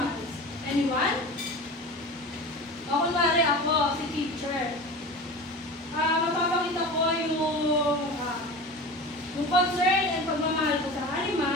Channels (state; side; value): normal; both; correlation 0.32